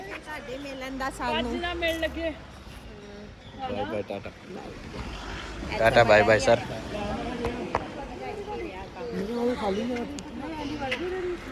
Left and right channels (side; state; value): both; identical; correlation 1.00